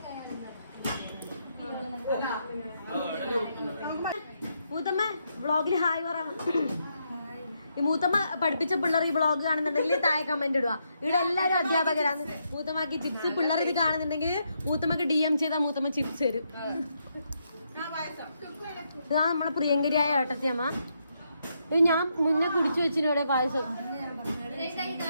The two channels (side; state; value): both; inverted; correlation -0.79